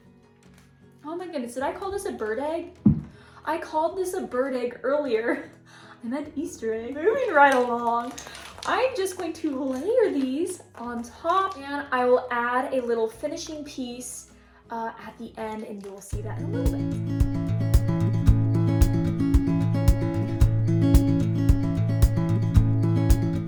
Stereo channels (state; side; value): identical; both; correlation 1.00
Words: Oh my goodness, did I call this a bird egg? I called this a bird egg earlier. I meant Easter egg. Moving right along. I'm just going to layer these on top, and I will add a little finishing piece at the end, and you will see that in a little bit.